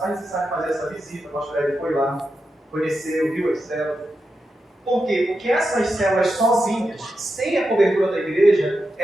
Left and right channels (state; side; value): normal; both; correlation 0.88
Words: necessário fazer essa visita, o pastor Hélio foi lá, conheceu, viu as células. Por quê? Porque essas células sozinhas, sem a cobertura da igreja,